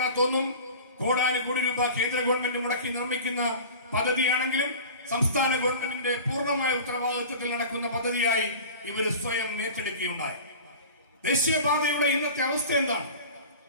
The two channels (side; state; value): both; inverted; correlation -0.38